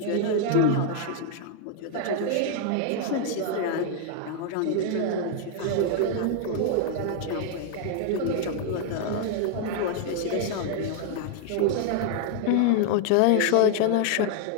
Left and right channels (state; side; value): different; both; correlation 0.00